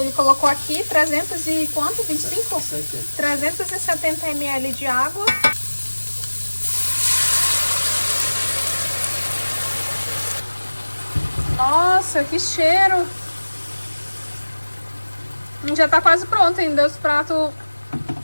ele colocou aqui 300 e quanto? 25? 70. 370 ml de água. Nossa, que cheiro! Já tá quase pronto ainda, os pratos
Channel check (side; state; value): both; inverted; correlation -1.00